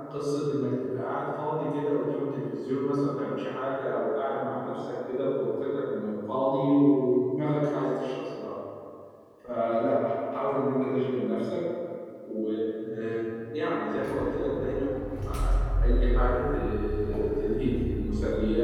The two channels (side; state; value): both; identical; correlation 1.00